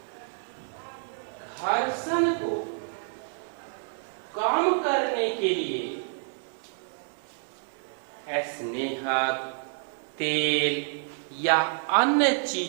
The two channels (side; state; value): left; silent; digital silence